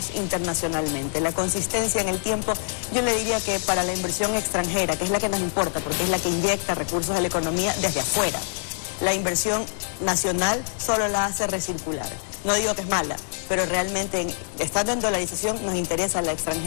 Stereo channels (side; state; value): right; silent; digital silence